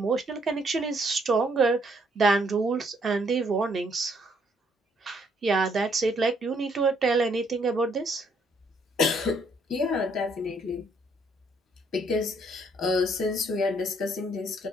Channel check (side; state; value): both; normal; correlation 0.68